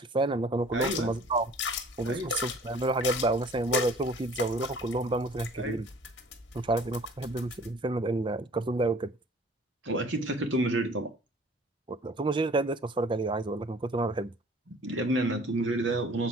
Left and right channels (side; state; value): both; normal; correlation 0.51